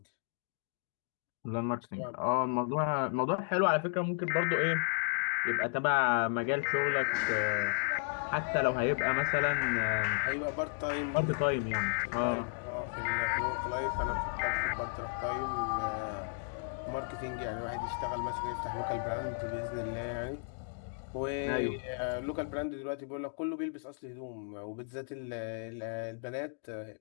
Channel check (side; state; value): right; silent; digital silence